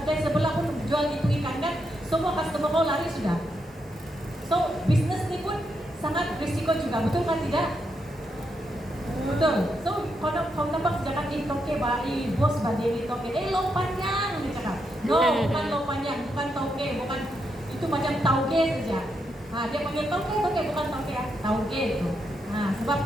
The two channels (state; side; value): normal; both; correlation 0.81